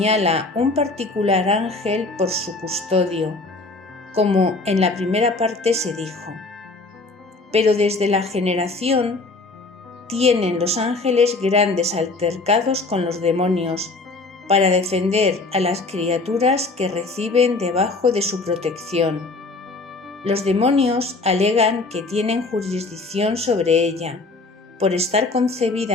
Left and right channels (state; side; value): quieter; right; 3.4 dB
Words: un particular ángel por su custodio, como en la primera parte se dijo. Pero desde la generación tienen los ángeles grandes altercados con los demonios para defender a las criaturas que reciben debajo de su protección. Los demonios alegan que tienen jurisdicción sobre ella, por estar